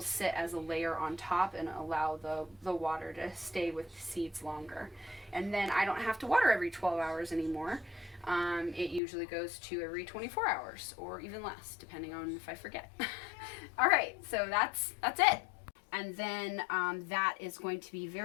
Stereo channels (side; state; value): right; drops out; at 9.0 s